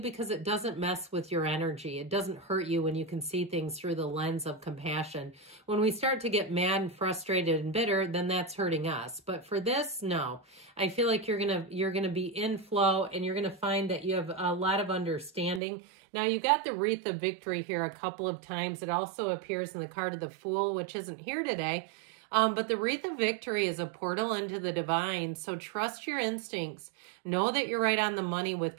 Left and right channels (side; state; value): left; drops out; at 15.6 s